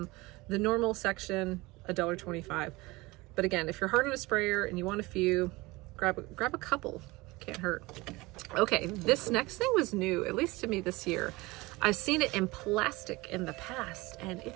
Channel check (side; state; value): left; quieter; 22.2 dB